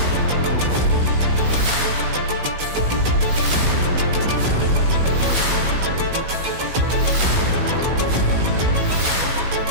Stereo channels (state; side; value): late; left; 16 ms